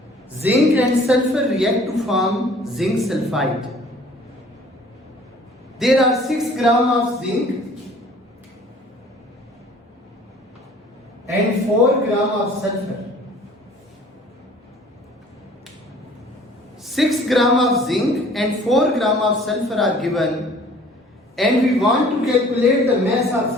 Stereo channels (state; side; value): normal; both; correlation 0.52